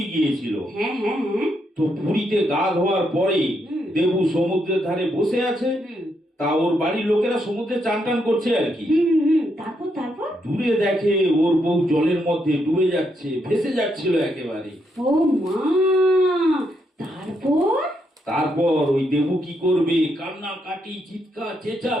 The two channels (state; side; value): normal; both; correlation 0.78